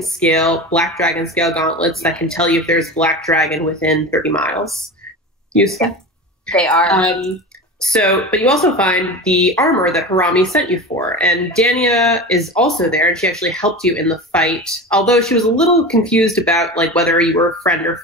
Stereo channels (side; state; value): both; normal; correlation 0.28